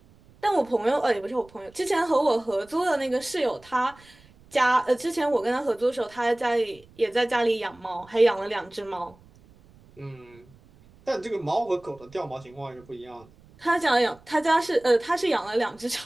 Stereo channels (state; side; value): noise; right; rumble, 27 dB below the sound